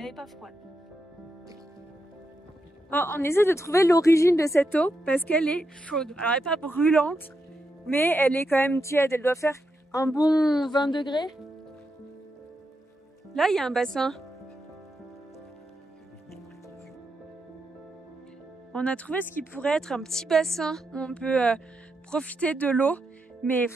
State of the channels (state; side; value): normal; both; correlation 0.85